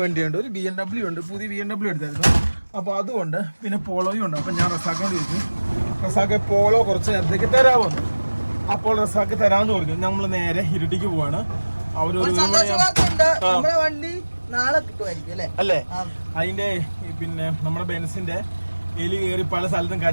വണ്ടിയുണ്ട്. ഒരു BMW ഉണ്ട്, പുതിയ BMW എടുത്തായിരുന്നു. അപ്പോൾ അതുകൊണ്ട് പിന്നെ പോളോയും ഉണ്ട്. അപ്പം ഞാൻ റസാക്കിനോട് ചോദിച്ചു, റസാക്ക് പോളോ കുറച്ച് നേരത്തേക്ക് തരാമെന്ന്. അപ്പോൾ റസാക്ക് തരാമെന്ന് പറഞ്ഞു. നമ്മൾ നേരെ ഇരട്ടിക്ക് പോവാണ്. അവരൊരു അല്ലേ? അതിന്റെ പിന്നെ നമ്മുടെ ബെൻസിന്റെ എലി കയറി പല സ്ഥലത്തും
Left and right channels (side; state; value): both; inverted; correlation -1.00